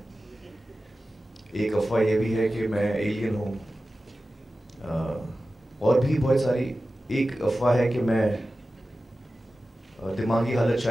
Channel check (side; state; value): both; normal; correlation 0.94